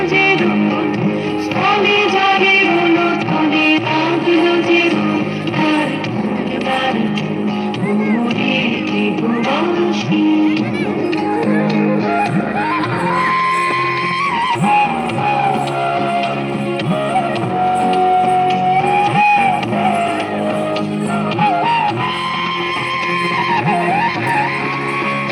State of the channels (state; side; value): identical; both; correlation 1.00